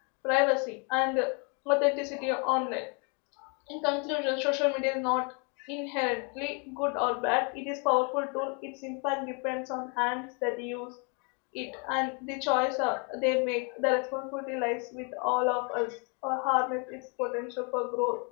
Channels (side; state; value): right; quieter; 35.7 dB